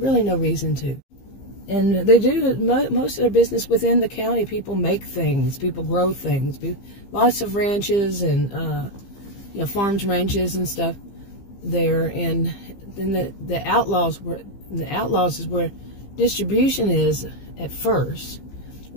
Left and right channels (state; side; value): late; right; 15 ms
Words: no reason to. And they do most of their business within the county. People make things, people grow things. Lots of ranches and you know, farms, ranches and stuff there. And then the Outlaws is where distribution is at first.